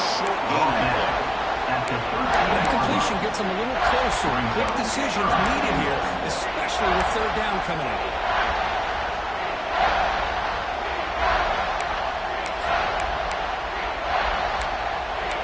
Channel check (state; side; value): identical; both; correlation 1.00